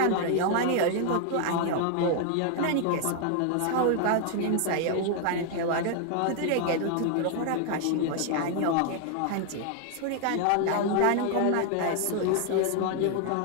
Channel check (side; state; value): both; different; correlation 0.00